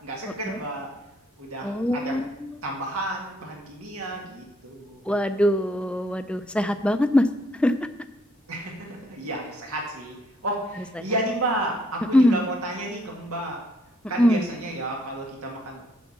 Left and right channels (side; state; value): both; normal; correlation 0.69